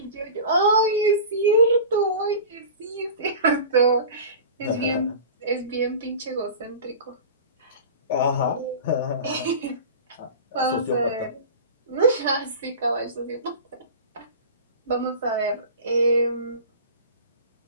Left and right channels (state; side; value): inverted; both; correlation -0.35